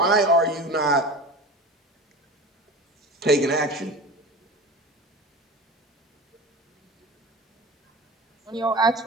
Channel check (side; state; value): both; normal; correlation 0.32